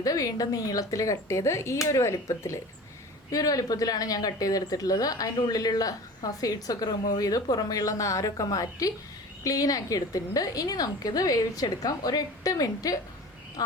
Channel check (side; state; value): both; normal; correlation 0.38